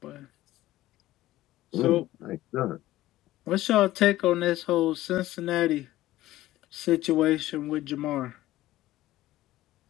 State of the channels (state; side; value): quieter; right; 15.7 dB